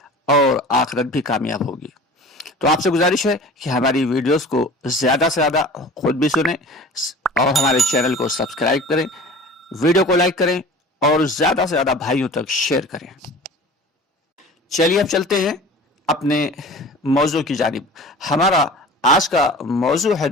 اور آخرت بھی کامیاب ہوگی۔ تو آپ سے گزارش ہے کہ ہماری ویڈیوز کو زیادہ سے زیادہ خود بھی سنیں اور ہمارے چینل کو سبسکرائب کریں، ویڈیو کو لائک کریں اور زیادہ سے زیادہ بھائیوں تک شیئر کریں۔ چلیے اب چلتے ہیں اپنے موضوع کی جانب۔ ہمارا آج کا موضوع ہے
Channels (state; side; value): normal; both; correlation 0.41